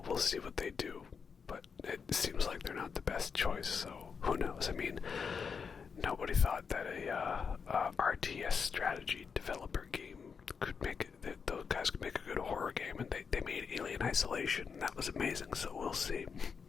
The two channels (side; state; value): right; quieter; 6.0 dB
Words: we'll see what they do. But it seems like they're not the best choice, so who knows? I mean, nobody thought that a RTS strategy developer game could make it, that those guys could make a good horror game, and they made Alien Isolation, and that was amazing, so we'll see.